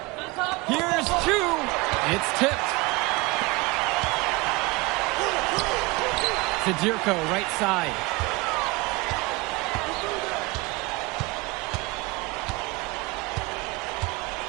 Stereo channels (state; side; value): quieter; left; 23.8 dB